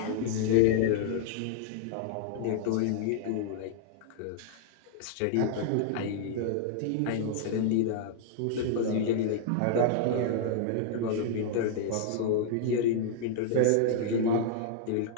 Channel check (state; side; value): different; both; correlation -0.01